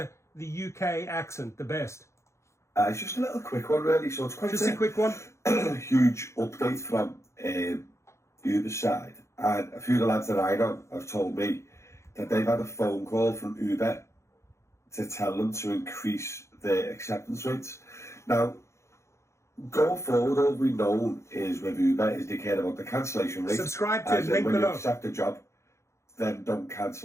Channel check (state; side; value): late; right; 0.14 ms